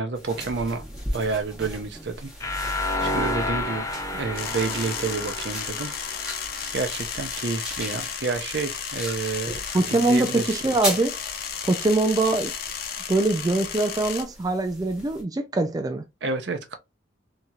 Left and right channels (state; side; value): normal; both; correlation 0.50